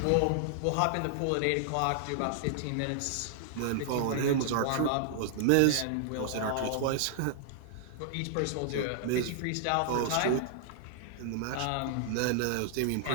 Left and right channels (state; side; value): different; both; correlation -0.01